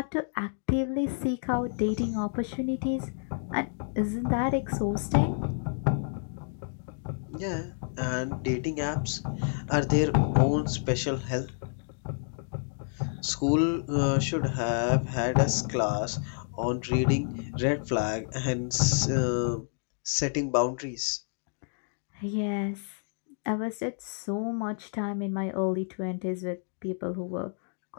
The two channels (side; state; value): right; silent; digital silence